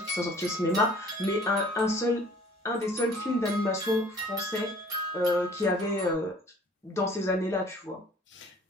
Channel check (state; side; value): normal; both; correlation 0.52